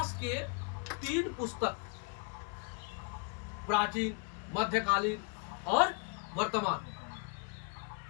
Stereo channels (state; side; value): quieter; right; 35.4 dB